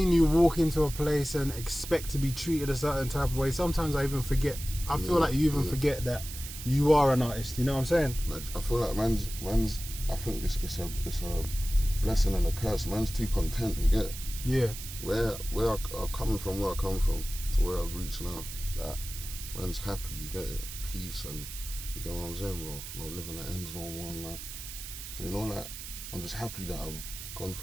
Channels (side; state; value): right; noise; hiss, 10 dB below the sound